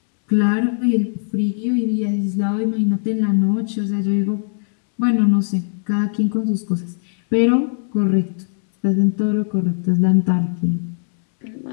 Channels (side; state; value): right; silent; digital silence